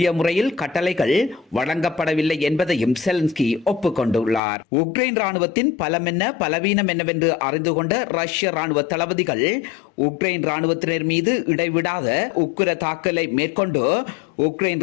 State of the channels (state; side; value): drops out; right; at 4.4 s